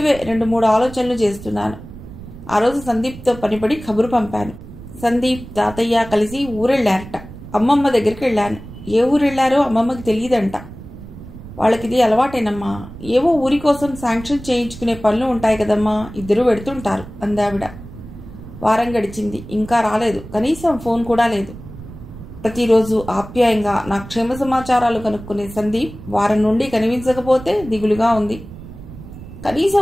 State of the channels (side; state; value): right; noise; rumble, 15 dB below the sound